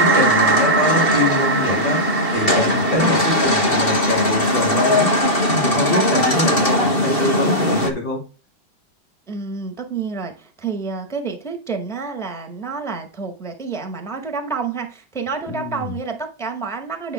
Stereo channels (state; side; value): late; right; 2.7 ms